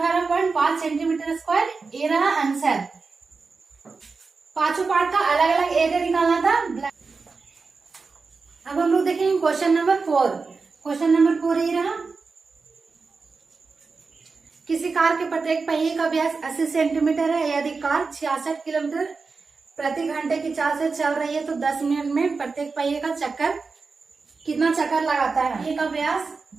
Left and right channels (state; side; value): quieter; left; 4.4 dB